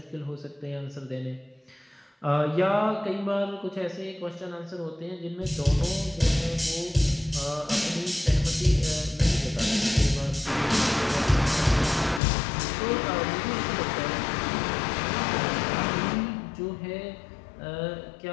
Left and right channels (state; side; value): drops out; right; at 12.2 s